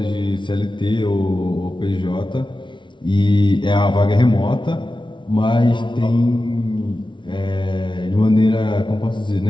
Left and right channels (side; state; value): right; late; 0.24 ms